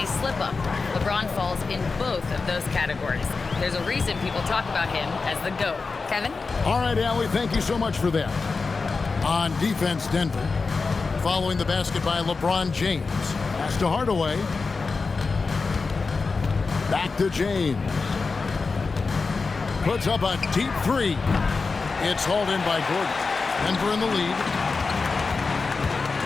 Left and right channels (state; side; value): quieter; right; 4.3 dB